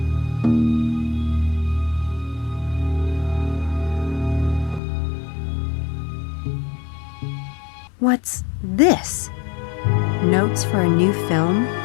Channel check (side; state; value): right; drops out; at 4.8 s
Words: What's this? Notes for a new film?